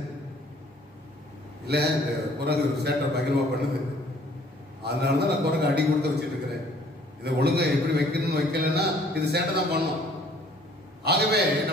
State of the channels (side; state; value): both; normal; correlation 0.57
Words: இல்ல இந்த குரங்கு சேட்டை பகிர்வா பண்ணுது, அதனாலதான் நான் குரங்கு அடி கொடுத்து வச்சுட்டு இருக்கிறேன். இதை ஒழுங்கா எப்படி வைக்கணும்னு வைக்கலன்னா இது சேட்டை தான் பண்ணும். ஆகவே